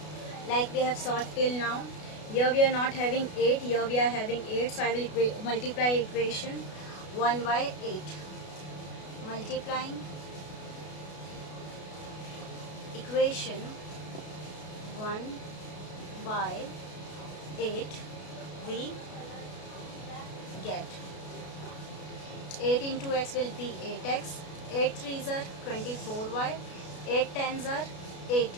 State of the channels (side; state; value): right; late; 33 ms